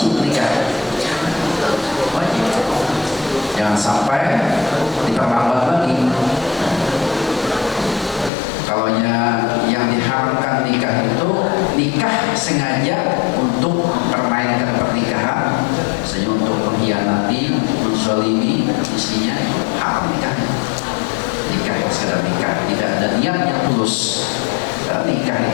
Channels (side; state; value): right; drops out; at 8.3 s